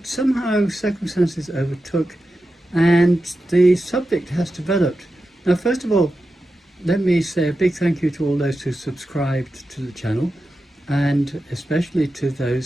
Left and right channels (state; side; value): normal; both; correlation 0.91